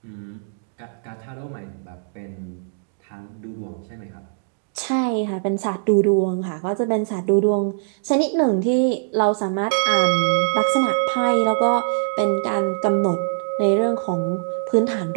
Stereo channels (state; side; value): silent; left; digital silence